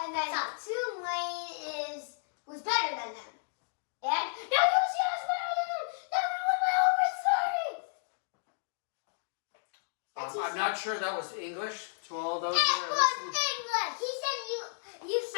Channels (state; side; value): silent; right; digital silence